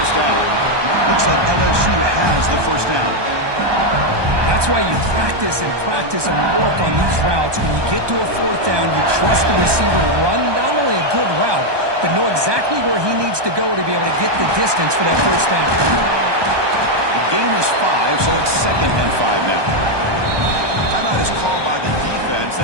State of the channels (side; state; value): left; late; 1.2 ms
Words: down. Looks like LSU has the 1st down. That's why you practice and work on these routes. When you get to a 4th down, you trust the receiver to run not only a good route, but know exactly where he needs to go to be able to get the distance for that 1st down. The gain is 5, so it's 2nd and 5 now. Timeout is called by the defense.